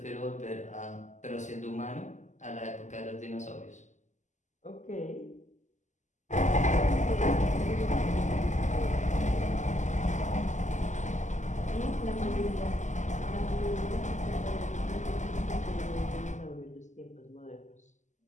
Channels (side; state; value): right; late; 0.34 ms